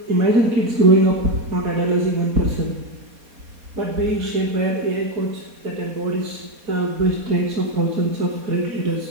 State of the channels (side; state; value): left; late; 4.2 ms